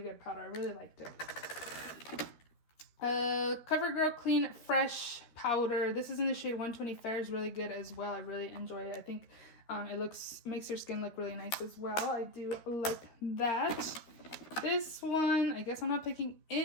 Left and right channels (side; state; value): right; late; 13 ms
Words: powder. I really liked it. CoverGirl Clean Fresh powder. This is in the shade 120 Fair. Is really good as well. I really enjoy it. I think it makes your skin look really nice as well. I do like that. This one, I guess I'm not picking